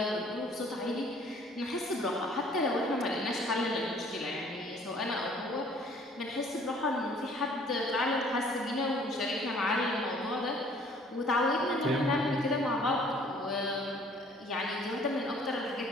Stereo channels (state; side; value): normal; both; correlation 0.56